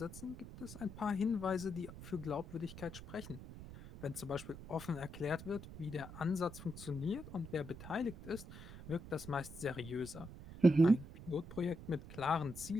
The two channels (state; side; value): noise; right; rumble, 13 dB below the sound